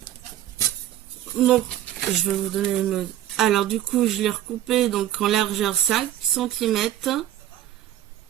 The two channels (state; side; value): quieter; left; 12.6 dB